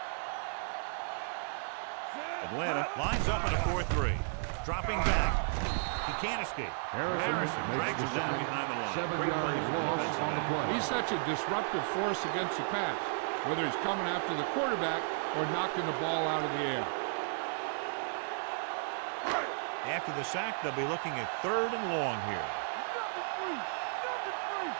Atlanta lines up in a 4-3. Dropping back. He can't escape. Harrison drags him down behind the line. 7 yards lost on the play. He's such a disruptive force against the pass, whether he's coming after the quarterback or knocking the ball out of the air. After the sack, they'll be looking at 3rd and long here.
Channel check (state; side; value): silent; left; digital silence